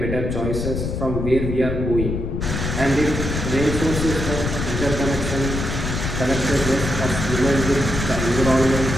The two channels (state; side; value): noise; left; rumble, 3 dB below the sound